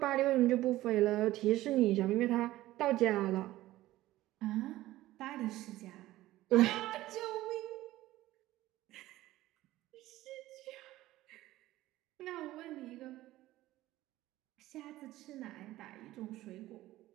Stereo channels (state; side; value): quieter; left; 16.1 dB